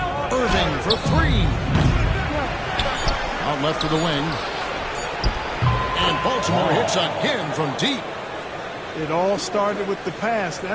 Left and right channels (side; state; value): both; identical; correlation 1.00